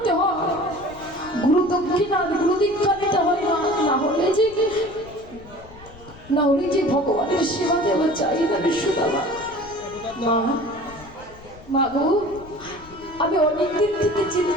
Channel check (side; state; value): left; noise; rumble, 20 dB below the sound